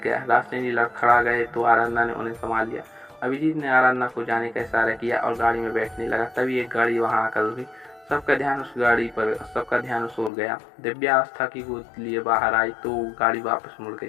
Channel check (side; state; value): right; drops out; at 10.3 s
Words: गया। रास्ते जी लड़खड़ा गए तो आराधना ने उन्हें संभाल लिया। अभिजीत ने आराधना को जाने का इशारा किया और गाड़ी में बैठने लगा। तभी एक गाड़ी वहां आकर रुकी। सबका ध्यान उस ओर गया। दिव्या आस्था की गोद लिए बाहर आई तो गाड़ी वापस मुड़